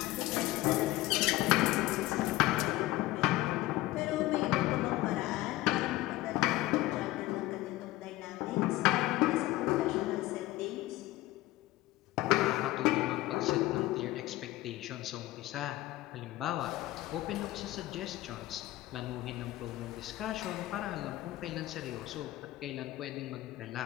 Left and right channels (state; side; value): quieter; right; 17.4 dB